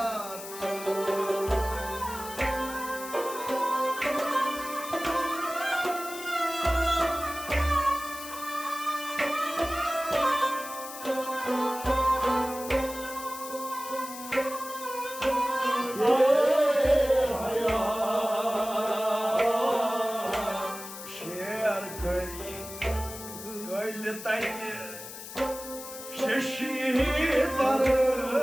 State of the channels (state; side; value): noise; left; hiss, 12 dB below the sound